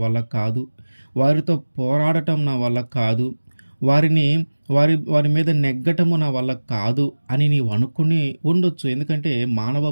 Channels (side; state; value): both; inverted; correlation -1.00